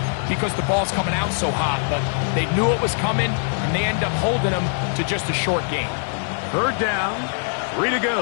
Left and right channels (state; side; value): silent; right; 64 dB below the other